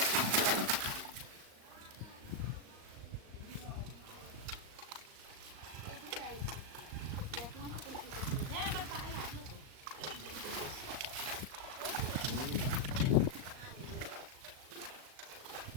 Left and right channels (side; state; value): left; late; 38 ms